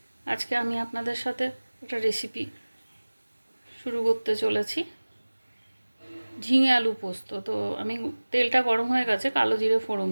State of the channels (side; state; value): both; inverted; correlation -1.00